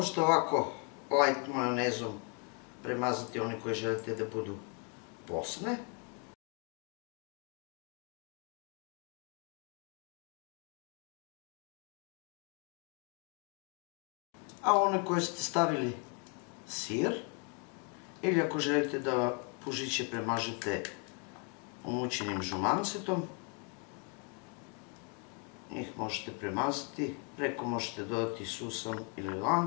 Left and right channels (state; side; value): quieter; right; 37.0 dB